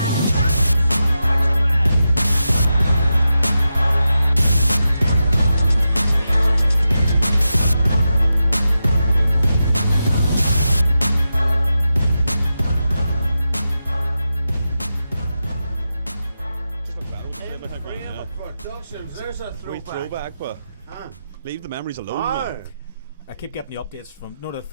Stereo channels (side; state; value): both; inverted; correlation -0.90